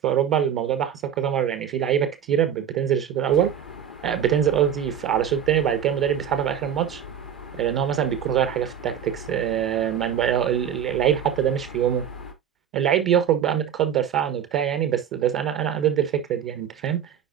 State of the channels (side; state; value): left; quieter; 9.0 dB